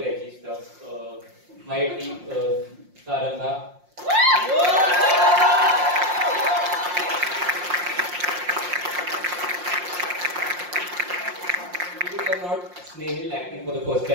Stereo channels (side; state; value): left; late; 5.6 ms